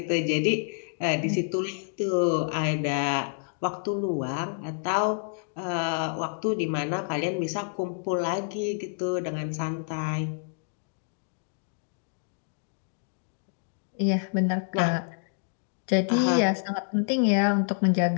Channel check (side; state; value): right; silent; digital silence